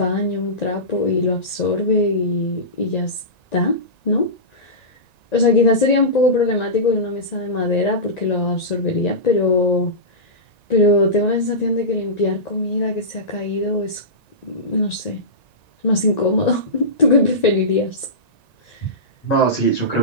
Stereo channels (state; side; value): late; right; 1.9 ms